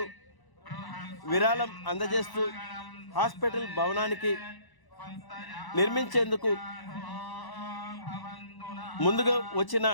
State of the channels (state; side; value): late; right; 1.0 ms